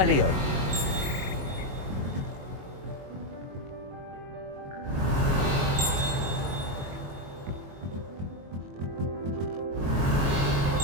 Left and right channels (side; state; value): left; late; 22 ms